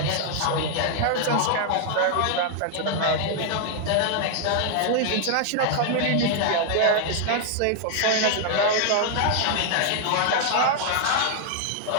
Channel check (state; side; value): different; both; correlation 0.00